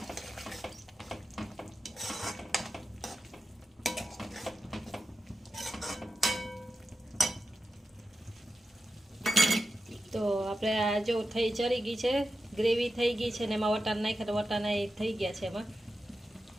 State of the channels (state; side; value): normal; both; correlation 0.91